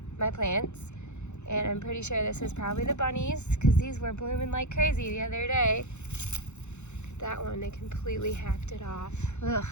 my plants, and I'm pretty sure this is probably the bunnies because these were blooming like crazy the other day. That one, they completely hacked it off. Ugh.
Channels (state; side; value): late; right; 0.83 ms